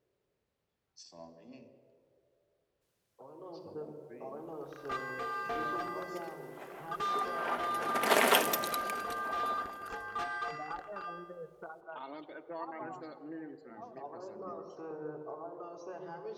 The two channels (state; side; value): identical; both; correlation 1.00